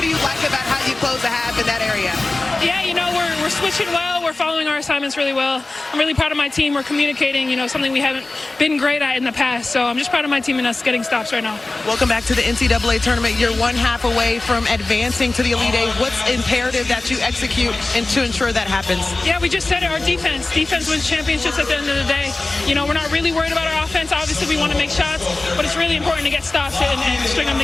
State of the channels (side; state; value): right; quieter; 3.1 dB